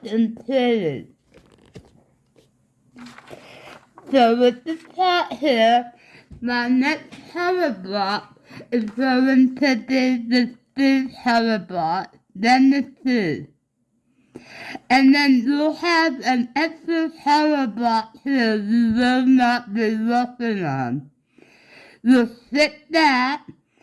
and pretty. So with the top here, my next color block is going to be the 3 color block, then the 2. And then you'll have an extra color block here you will not be working on. You'll stick that,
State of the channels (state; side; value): identical; both; correlation 1.00